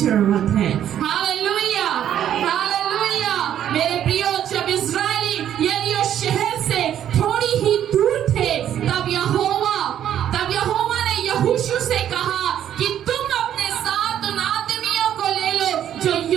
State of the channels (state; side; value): quieter; left; 10.5 dB